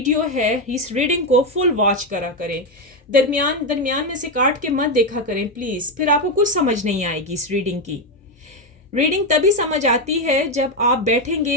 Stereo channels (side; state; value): both; normal; correlation 0.08